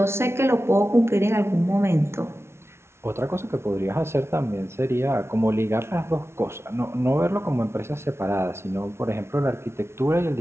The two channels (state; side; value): late; left; 0.12 ms